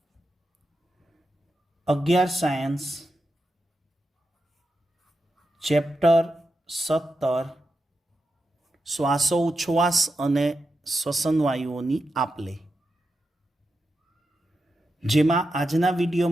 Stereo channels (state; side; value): normal; both; correlation 0.88